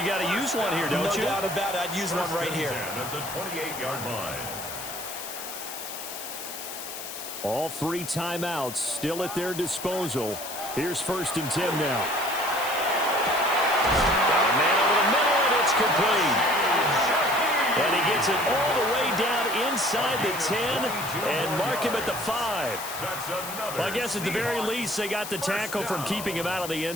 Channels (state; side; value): noise; left; hiss, 9 dB below the sound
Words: got to use one here, don't you? No doubt about it. I'd use one right here. 1st and 10 at the 28-yard line. All 3 timeouts still at their disposal. Here's 1st and 10 now. Got a man over the middle, and it's complete. And he gets it all the way down inside the 10 and mark him at the 5. Well, I guess at the very least they got the tackle from keeping him out of the